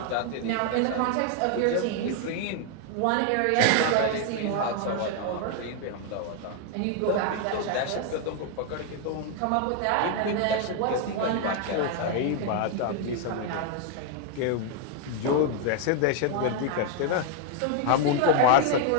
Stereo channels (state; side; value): different; both; correlation 0.00